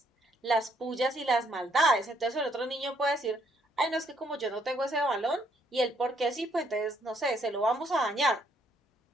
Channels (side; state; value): both; normal; correlation 0.70